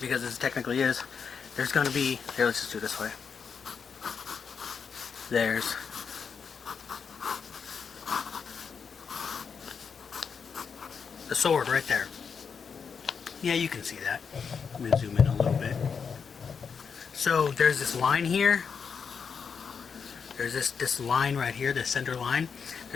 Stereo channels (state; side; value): quieter; right; 6.2 dB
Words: this technically is. There's going to be, here, let's just do it this way. There's the sword right there. Yeah, you can see that. I'm going to zoom in a little bit. So there's this line here. There's this line right here, the center line.